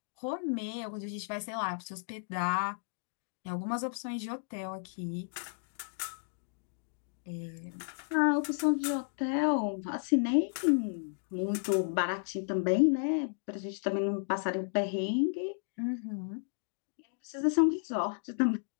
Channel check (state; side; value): silent; right; digital silence